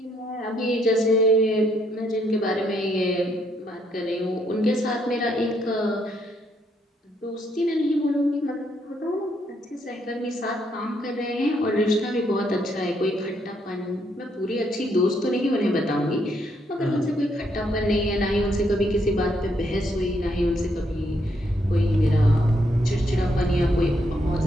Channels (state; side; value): normal; both; correlation 0.74